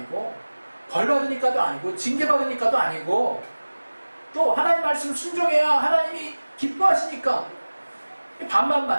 벌 받으니까도 아니고 징계 받으니까도 아니고 또 하나님 말씀 순종해야 하나님이 기뻐하시니까 반반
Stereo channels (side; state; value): both; inverted; correlation -1.00